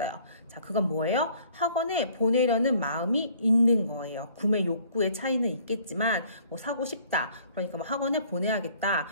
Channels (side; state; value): both; inverted; correlation -0.58